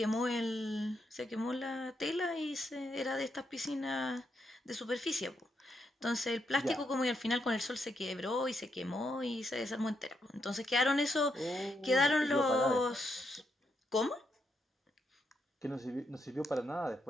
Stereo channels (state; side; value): normal; both; correlation 0.79